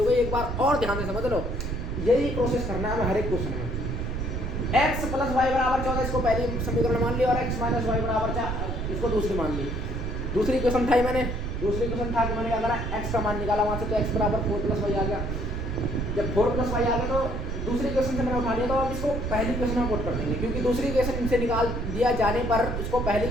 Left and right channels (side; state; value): right; noise; rumble, 3 dB below the sound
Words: गई। एक बार और ध्यान से समझ लो, यही प्रोसेस करना है हर एक क्वेश्चन में। x + y = 14, इसको पहली समीकरण मान ली, और x - y = 4 इसको दूसरी मान ली। दूसरी इक्वेशन था मैंने, दूसरी इक्वेशन था कि मैंने क्या करा? x का मान निकाला वहां से, तो x = 4 + y आ गया। जब 4 + y आ गया तो दूसरी क्वेश्चन से मैंने उठा लिया तो अब इसको पहली क्वेश्चन में पुट कर देंगे, क्योंकि दूसरी क्वेश्चन इनसे निकाल दिया जाने पर इसको पहली